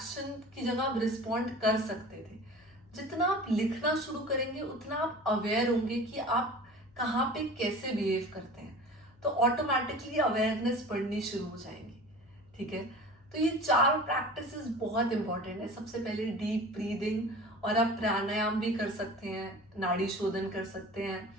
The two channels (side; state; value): left; noise; hum, 29 dB below the sound